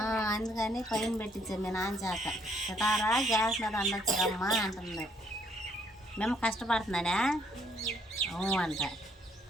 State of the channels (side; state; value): both; normal; correlation 0.68